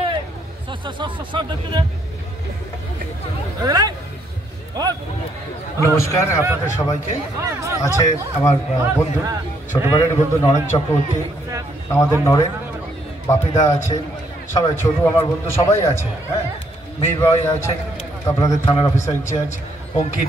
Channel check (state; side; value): normal; both; correlation 0.71